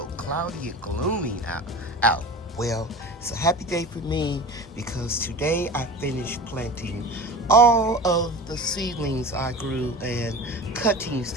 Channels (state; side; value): normal; both; correlation 0.34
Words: cloudy and gloomy out? Well, it's a happy day for me because today I finished planting all of the seedlings I grew and cuttings